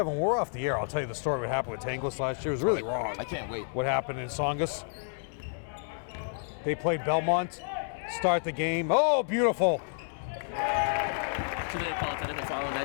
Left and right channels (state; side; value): silent; right; digital silence